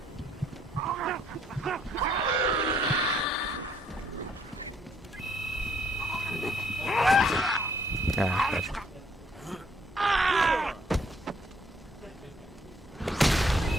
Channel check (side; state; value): both; normal; correlation 0.66